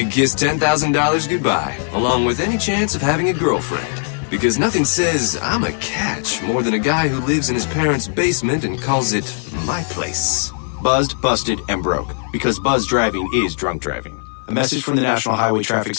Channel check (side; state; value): right; silent; digital silence